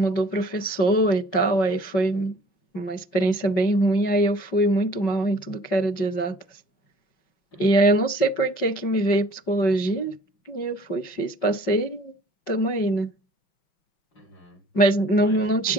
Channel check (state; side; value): late; right; 5.4 ms